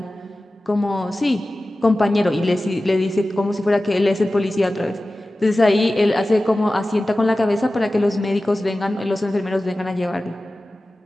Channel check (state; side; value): normal; both; correlation 0.96